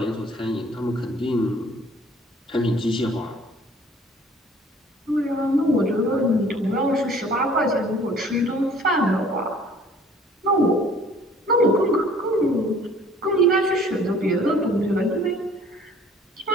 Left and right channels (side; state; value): both; normal; correlation 0.53